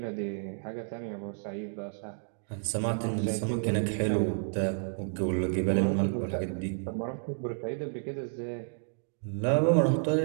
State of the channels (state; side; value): silent; left; digital silence